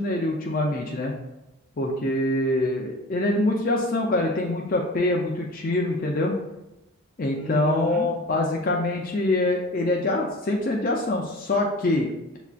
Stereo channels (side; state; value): both; normal; correlation 0.39